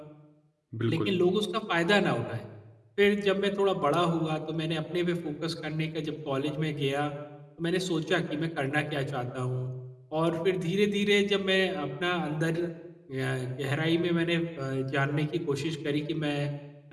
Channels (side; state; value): both; identical; correlation 1.00